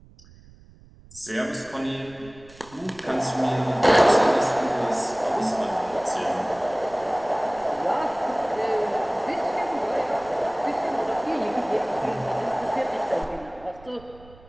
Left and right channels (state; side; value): noise; right; rumble, 23 dB below the sound